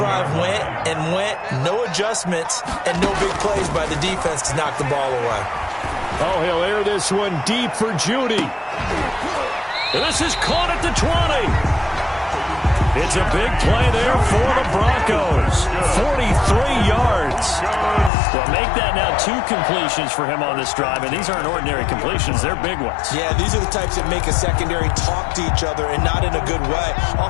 went and went, no adjustments, and no big plays by the defense to knock the ball away. Oh, he'll air this one deep for Judy. And this is caught at the 20. It's a big play there for the Broncos. 43 yards. Well, make that now 2 completions for him on this drive, and these aren't ordinary completions. They're big ones. Yeah, these are the types that make a secondary talk to each other, and not in a good way.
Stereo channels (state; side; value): drops out; right; at 18.1 s